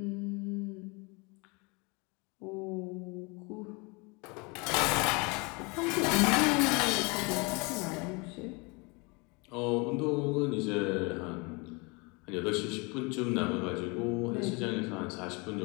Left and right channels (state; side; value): quieter; right; 29.0 dB